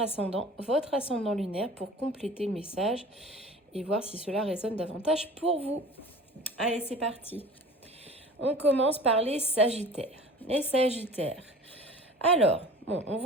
lunaire pour compléter le message et voir si cela résonne davantage pour vous. Allez, c'est parti. On commence par les Sagittaires. Les Sagittaires. Alors, bon, on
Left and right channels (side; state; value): both; normal; correlation 0.41